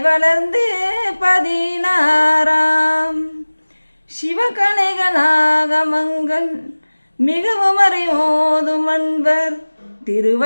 வளர்ந்து 16ஆம் சிவகணைகளாகமங்கள் மிகவும் அறிவோதும் அன்பர்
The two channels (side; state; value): both; inverted; correlation -1.00